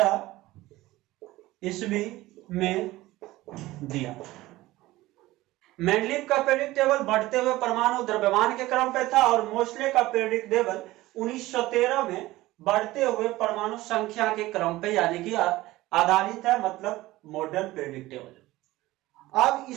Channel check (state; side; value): quieter; left; 17.8 dB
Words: ईस्वी में दिया। मेंडलीव का पीरियोडिक टेबल बढ़ते हुए परमाणु द्रव्यमान के क्रम पे था और मोस्ले का पीरियोडिक टेबल 1913 में बढ़ते हुए परमाणु संख्या के क्रम पे यानी कि आधारित है, मतलब मॉडर्न पीरियोडिक टेबल। अब